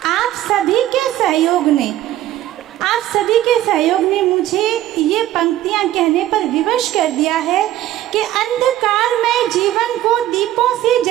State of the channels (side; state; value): left; quieter; 13.6 dB